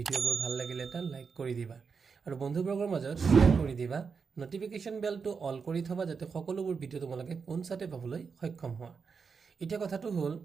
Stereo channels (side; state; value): left; quieter; 5.5 dB